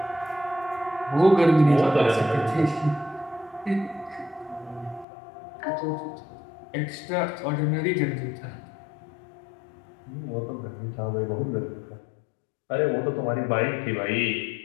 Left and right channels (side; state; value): right; drops out; at 5.1 s